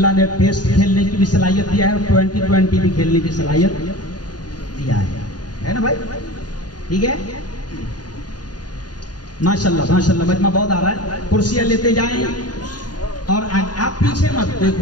نے ٹیسٹ کھیلنے کی بھی صلاحیت دیا ہے اور 2020 بھی کھیلنے کی صلاحیت دیا ہے نا بھائی؟ ٹھیک ہے ماشاءاللہ ماشاءاللہ. مجمع بہت آ رہا ہے. کرسیاں لیتے جائیں اور آپ پیچھے مت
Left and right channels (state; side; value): late; right; 0.69 ms